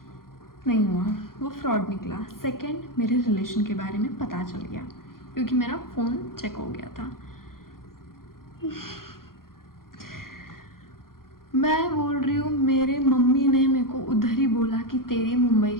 नहीं हुआ, वो फ्रॉड निकला। सेकंड, मेरे रिलेशन के बारे में पता चल गया क्योंकि मेरा फ़ोन चेक हो गया था। मैं बोल रही हूँ मेरे मम्मी ने मेरे को उधर ही बोला कि तेरी मुंबई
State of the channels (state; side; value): late; right; 0.92 ms